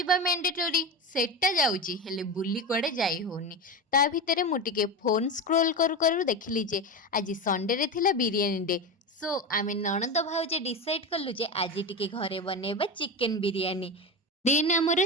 ମ୍ୟାଣ୍ଡେଟୋରି, ସେଟା ଯାଉଛି, ହେଲେ ବୁଲି କୁଆଡ଼େ ଯାଇ ହଉନି। ତା ଭିତରେ ମୁଁ ଟିକେ ଫୋନ୍ ସ୍କ୍ରୋଲ୍ କରୁ କରୁ ଦେଖିଲି ଯେ ଆଜି ସଣ୍ଡେରେ ଥିଲା ବିରିୟାନୀ ଡେ। ସୋ ଆମେ ନଣନ୍ଦ ଭାଉଜ ଡିସାଇଡ଼୍ କଲୁ ଯେ ଆଜି ଟିକେ ଘରେ ବନେଇବା ଚିକେନ୍ ବିରିୟାନୀ। ଦେନ୍ ଆମର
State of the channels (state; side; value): normal; both; correlation 0.21